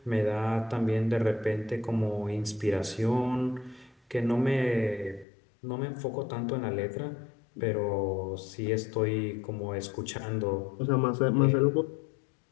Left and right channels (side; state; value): right; drops out; at 5.2 s